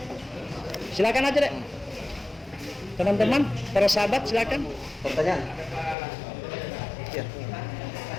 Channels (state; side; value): drops out; right; at 6.0 s